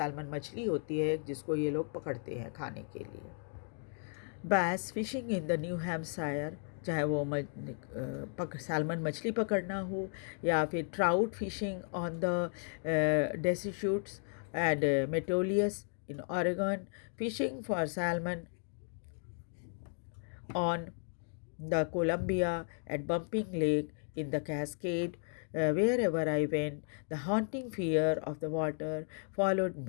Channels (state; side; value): silent; right; 55 dB below the other